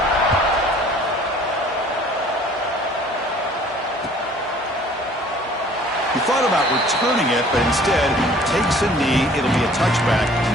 He thought about returning it, but instead takes a knee. It'll be a touchback,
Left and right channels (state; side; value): normal; both; correlation 0.53